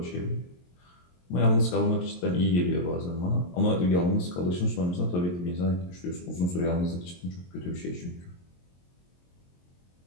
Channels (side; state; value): right; late; 22 ms